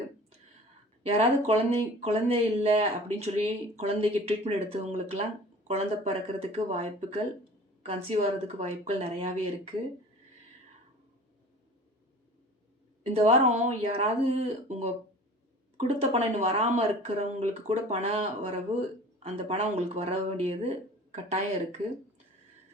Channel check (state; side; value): normal; both; correlation 0.43